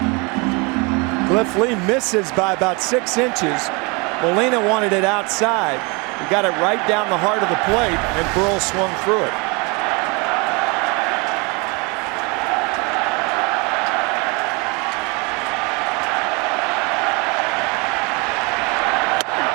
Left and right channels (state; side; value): quieter; left; 29.3 dB